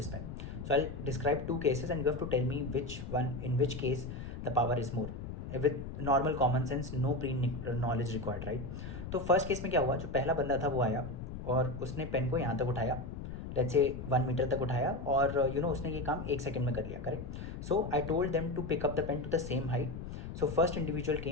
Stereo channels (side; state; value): left; noise; rumble, 8 dB below the sound